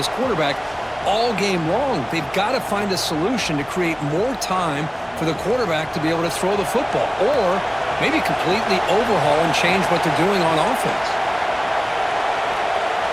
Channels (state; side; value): identical; both; correlation 1.00